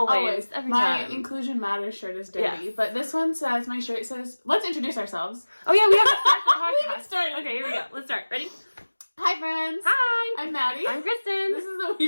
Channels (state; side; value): inverted; both; correlation -1.00